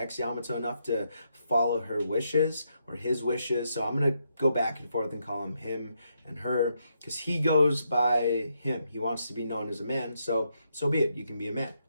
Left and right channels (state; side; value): inverted; both; correlation -0.79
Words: Yamato enough to follow her wishes or his wishes. So I'm going to go back and forth and call him and her, because he goes by him. He wants to be known as a man. So be it. You can be a man.